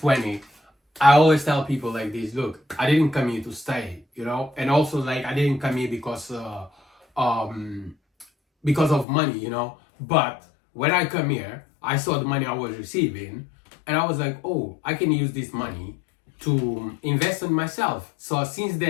I always tell people like this, look, I didn't come here to stay, you know. And also like I didn't come here because of money, you know. But when I come here, I saw the money I was receiving and I was like, oh, I can use this money to invest in myself. So since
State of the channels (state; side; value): drops out; right; at 9.1 s